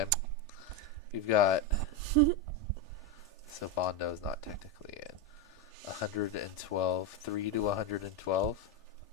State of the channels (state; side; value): normal; both; correlation 0.10